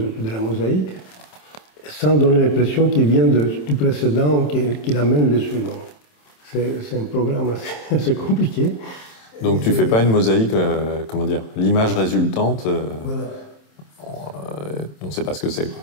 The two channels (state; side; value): late; right; 27 ms